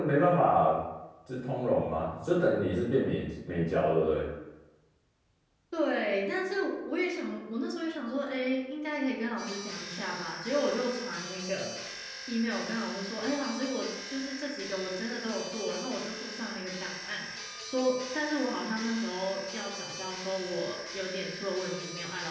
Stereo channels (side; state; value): both; identical; correlation 1.00